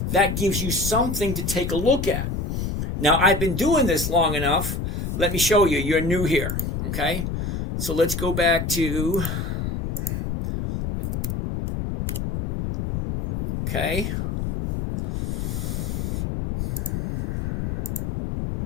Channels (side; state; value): left; noise; rumble, 2 dB below the sound